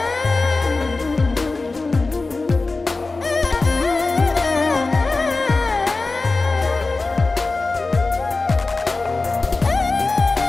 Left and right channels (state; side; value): quieter; right; 3.6 dB